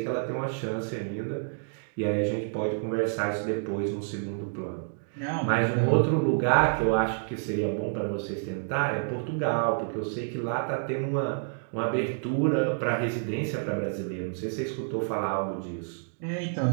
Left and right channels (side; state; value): left; silent; digital silence